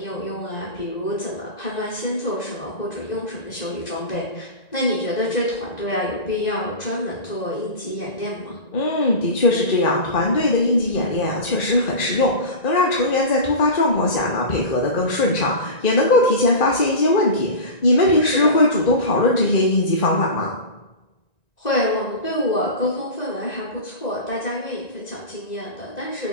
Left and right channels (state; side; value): late; right; 1.9 ms